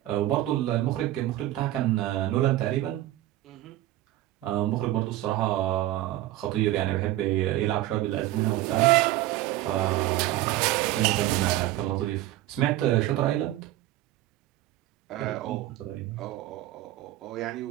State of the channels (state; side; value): quieter; left; 15.2 dB